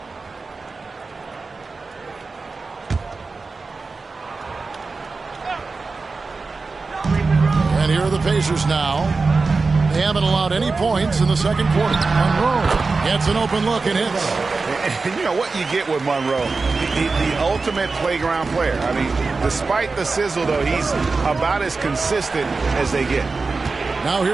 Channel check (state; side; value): quieter; left; 4.1 dB